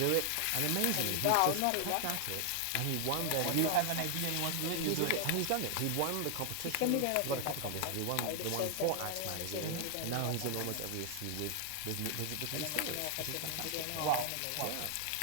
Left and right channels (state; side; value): different; both; correlation 0.00